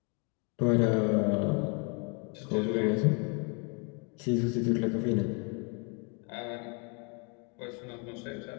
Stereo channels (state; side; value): quieter; right; 34.5 dB